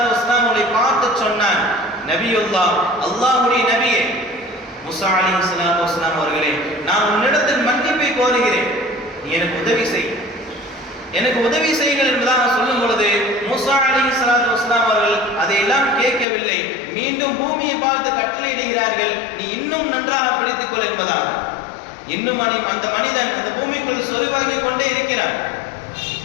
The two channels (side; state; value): right; drops out; at 16.2 s